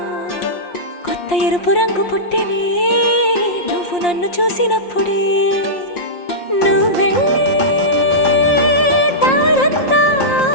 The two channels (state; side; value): late; right; 5.7 ms